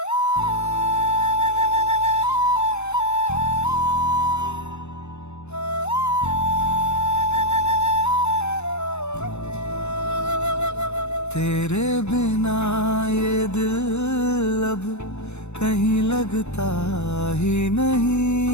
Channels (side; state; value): right; late; 0.81 ms